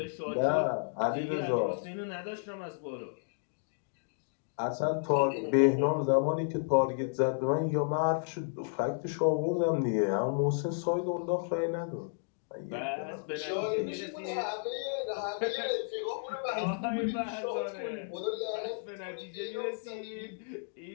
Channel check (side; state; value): right; silent; digital silence